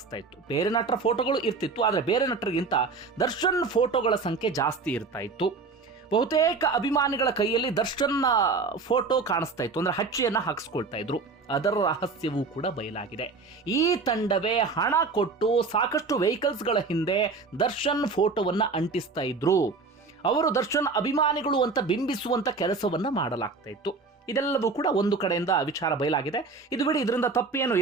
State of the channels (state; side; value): quieter; left; 4.2 dB